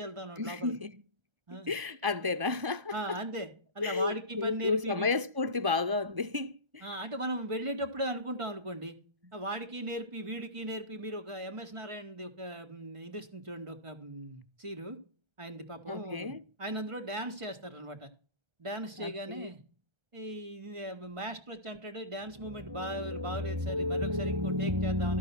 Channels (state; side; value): late; left; 1.0 ms